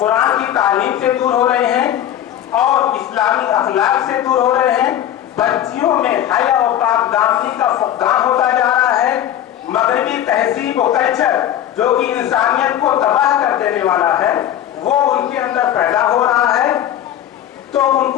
की तालीम से दूर हो रहे हैं और इस्लामी अखलाक से दूर हो रहे हैं। बच्चियों में हया और पाकदामनी का फुकदान होता जा रहा है। मगरबी तहजीब और कल्चर जो कि इंसानियत को तबाह कर देने वाला है, वो उनके अंदर पैदा हो रहा है। तो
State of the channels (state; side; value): quieter; right; 11.3 dB